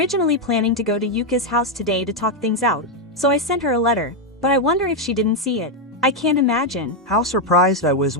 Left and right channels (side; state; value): both; normal; correlation 0.03